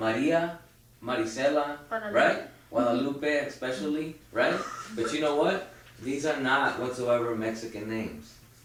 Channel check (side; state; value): both; identical; correlation 1.00